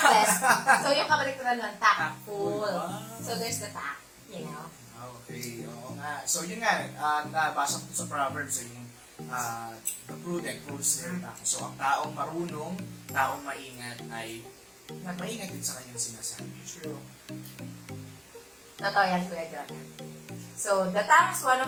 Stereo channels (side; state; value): both; identical; correlation 1.00